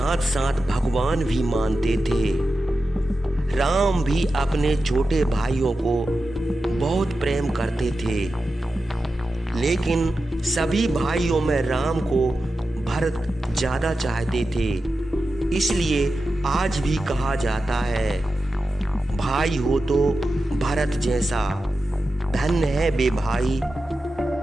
साथ भगवान भी मानते थे। राम भी अपने छोटे भाइयों को बहुत प्रेम करते थे, लेकिन सभी भाइयों में राम को भरत ज्यादा चाहते थे। इसलिए आज भी कहा जाता है, भाई हो तो भरत जैसा। धन्य है वे भाई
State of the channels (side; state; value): both; normal; correlation 0.92